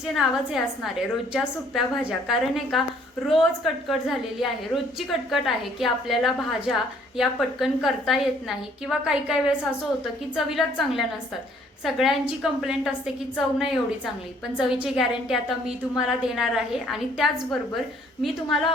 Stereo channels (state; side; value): normal; both; correlation 0.62